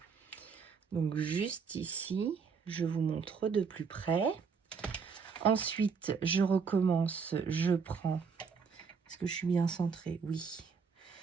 Donc, juste ici, je vous montre de plus près. Ensuite, je recommence, je prends... Est-ce que je suis bien centrée? Oui.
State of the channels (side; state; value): left; quieter; 5.7 dB